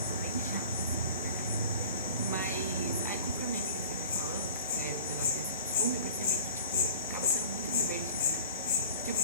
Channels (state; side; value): inverted; both; correlation -0.44